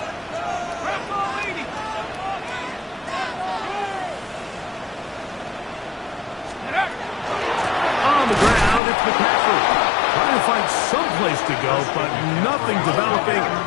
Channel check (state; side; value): drops out; right; at 8.8 s